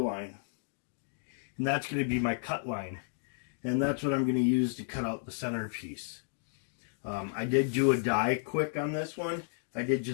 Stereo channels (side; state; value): right; silent; digital silence